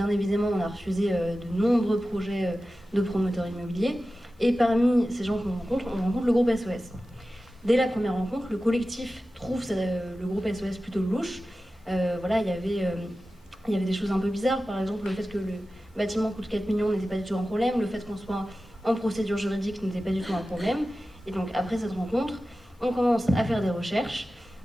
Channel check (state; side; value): normal; both; correlation 0.94